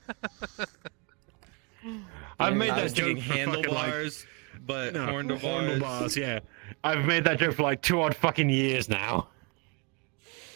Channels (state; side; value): quieter; left; 32.6 dB